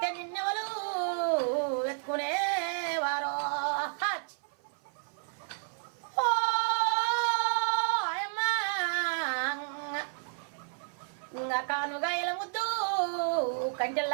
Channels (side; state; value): left; silent; 57 dB below the other